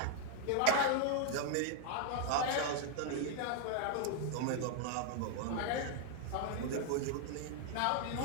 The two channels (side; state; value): both; different; correlation 0.00